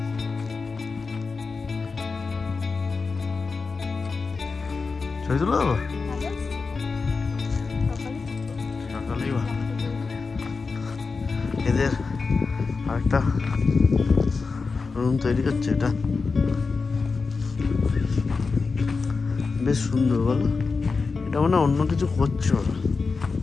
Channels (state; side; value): quieter; right; 4.5 dB